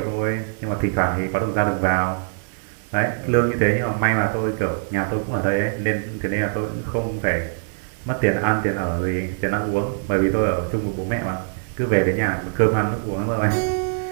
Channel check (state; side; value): silent; left; 56 dB below the other